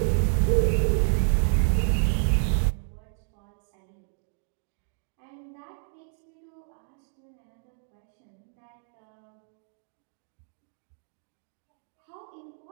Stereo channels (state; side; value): silent; left; digital silence